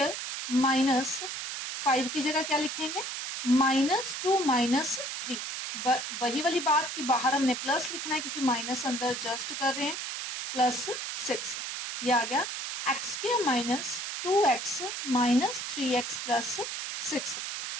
माइनस 5 की जगह क्या लिखेंगे, -2 -3। वही वाली बात कि बाहर हमने प्लस लिखना है क्योंकि माइनस अंदर जस्ट कर रहे हैं, +6। ये आ गया x square minus 2x minus 3x plus 6।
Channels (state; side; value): noise; right; hiss, 5 dB below the sound